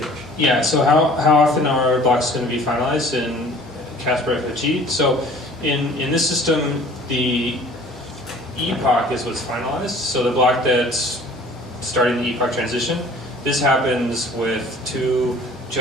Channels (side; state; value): both; normal; correlation 0.49